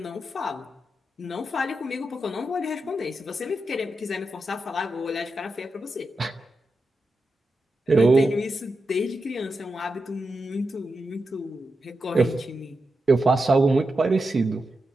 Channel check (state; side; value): normal; both; correlation 0.88